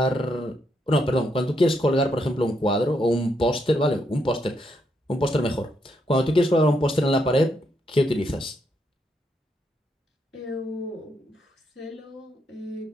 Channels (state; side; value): normal; both; correlation 0.78